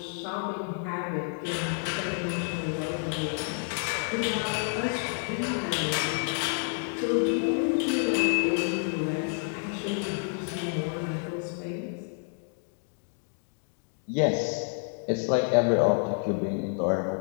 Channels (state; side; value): silent; right; 56 dB below the other